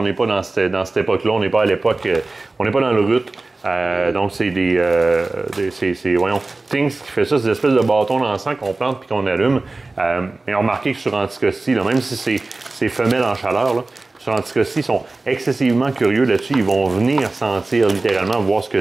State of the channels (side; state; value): left; quieter; 3.3 dB